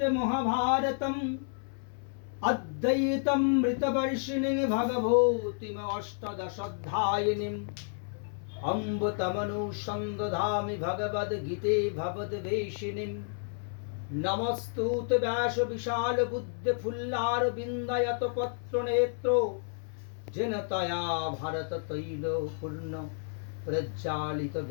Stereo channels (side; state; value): right; silent; 57 dB below the other